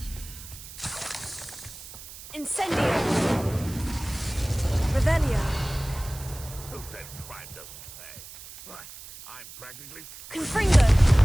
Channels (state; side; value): noise; right; hiss, 15 dB below the sound